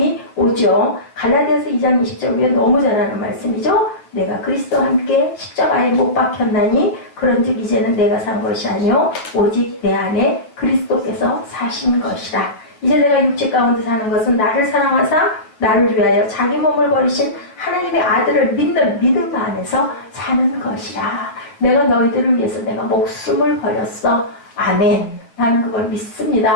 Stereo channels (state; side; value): late; right; 9.0 ms